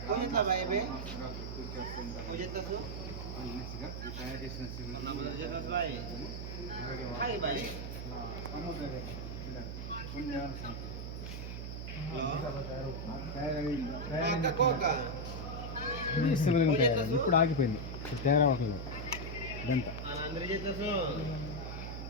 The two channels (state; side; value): noise; right; hum, 6 dB below the sound